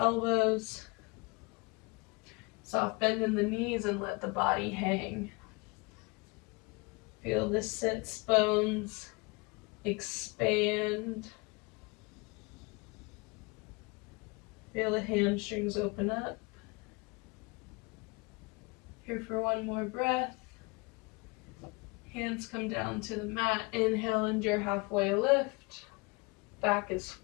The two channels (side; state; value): right; quieter; 27.8 dB